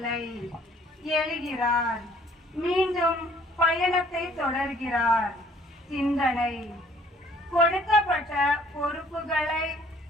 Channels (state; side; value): normal; both; correlation 0.59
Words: எழுகிறார், மீண்டும் பயணத்தை தொடர்கிறார். சிந்தனை: கொடுக்கப்பட்ட பொறுப்புகளை